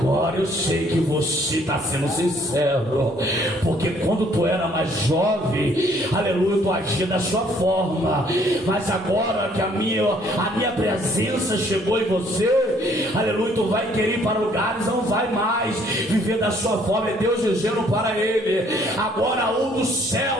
eu sei que você está sendo sincero, porque quando tu era mais jovem, aleluia, tu agia da sua forma, mas agora que a minha presença chegou em você, aleluia, tu vai querer ir para lugares, não vai mais viver da sua forma. É Deus dizendo para ele: agora um dos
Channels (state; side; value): normal; both; correlation 0.63